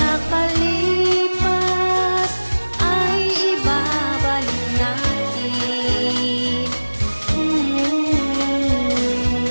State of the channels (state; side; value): inverted; both; correlation -1.00